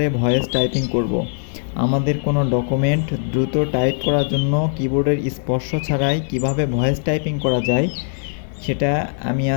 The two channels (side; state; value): right; silent; digital silence